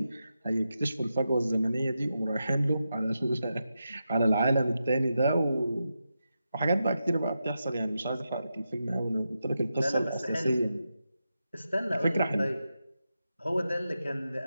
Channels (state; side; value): inverted; both; correlation -0.88